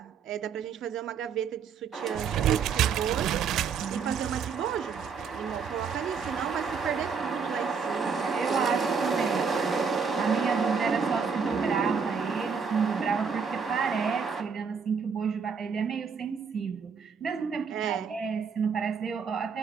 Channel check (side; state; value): left; quieter; 6.0 dB